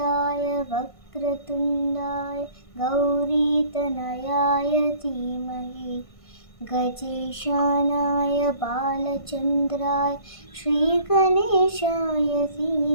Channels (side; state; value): right; late; 1.5 ms